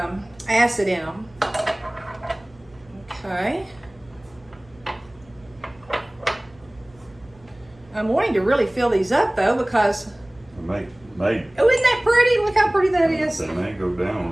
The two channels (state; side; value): noise; right; hum, 27 dB below the sound